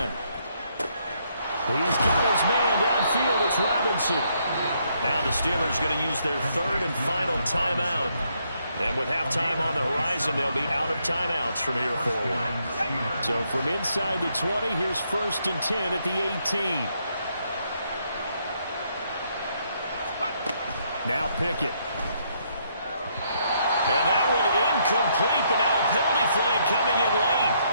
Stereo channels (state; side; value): inverted; both; correlation -0.73